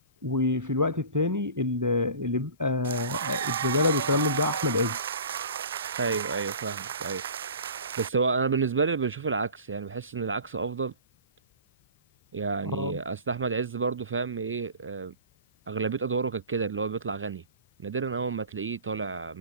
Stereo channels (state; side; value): inverted; both; correlation -0.40